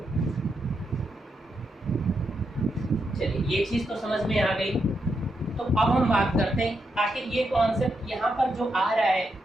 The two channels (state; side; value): normal; both; correlation 0.83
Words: चलिए ये चीज़ तो समझ में आ गई। तो अब हम बात करते हैं आखिर ये कॉन्सेप्ट यहाँ पर जो आ रहा है